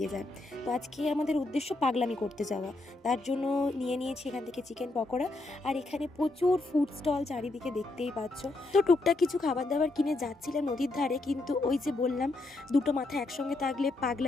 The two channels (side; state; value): right; quieter; 3.0 dB